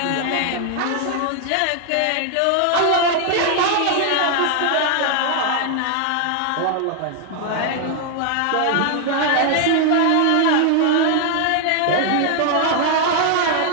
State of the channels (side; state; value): both; different; correlation 0.00